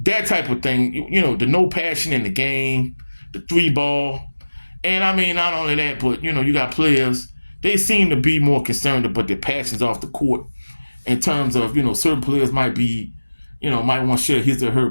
type of thing. The no passion in the game, the 3-ball. And I mean, not only that, but you got players. They seem to be more concerned about their passions off the court. In terms of certain players might be, might want to share his or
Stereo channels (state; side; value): inverted; both; correlation -1.00